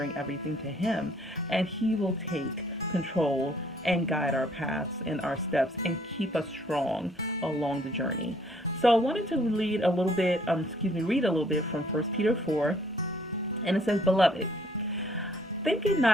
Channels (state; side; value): normal; both; correlation 0.63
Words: everything to Him, and He will take control and guide our paths and our steps and keep us strong along the journey. So I wanted to read a little bit from 1 Peter 4, and it says, "Beloved, Think it